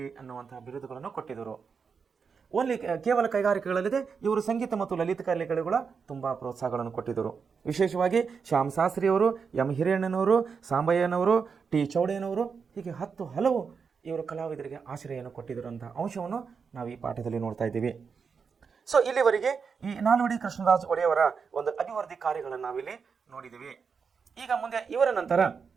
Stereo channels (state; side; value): quieter; left; 5.8 dB